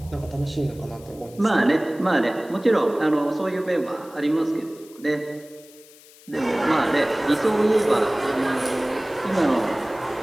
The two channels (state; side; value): noise; left; hiss, 24 dB below the sound